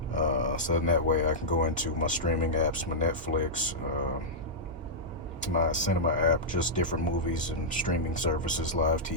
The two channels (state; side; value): normal; both; correlation -0.11